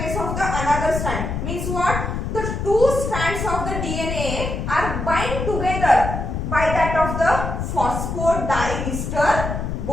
of the another strand means what? The two strands of the DNA are bind together by that of the phosphodiester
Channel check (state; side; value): noise; left; rumble, 3 dB below the sound